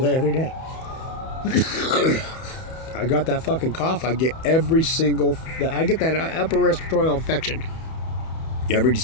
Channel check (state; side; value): late; right; 31 ms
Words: every day. I got that fucking cough. I get that upper respiratory infection every